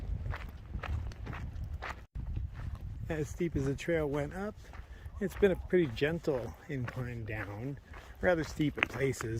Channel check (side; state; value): both; identical; correlation 1.00